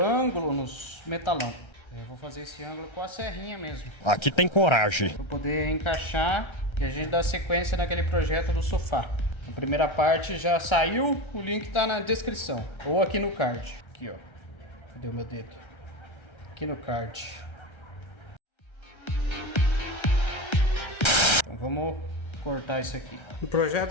nos metalão. Eu vou fazer esse ângulo com a serrinha mesmo. Aqui tem coragem. Para poder encaixar e a gente dar sequência naquele projeto do sofá. A primeira parte já saiu, o link tá na descrição. Ou aqui no card. Aqui, ó. Cadê o meu dedo? Aqui no card. Então vamos cortar isso aqui. No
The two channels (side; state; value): right; late; 1.3 ms